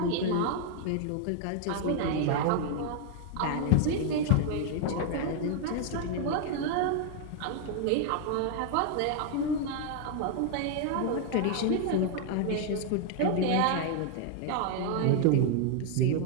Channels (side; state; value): both; different; correlation 0.00